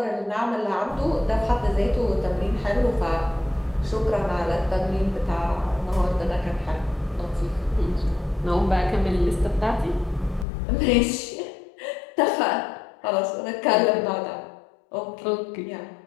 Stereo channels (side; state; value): right; drops out; at 10.5 s